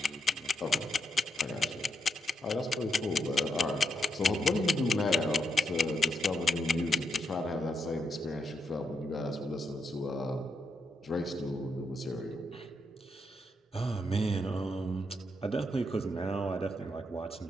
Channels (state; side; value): normal; both; correlation 0.80